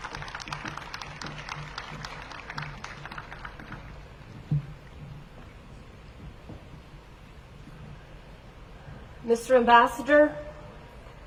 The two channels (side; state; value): both; identical; correlation 1.00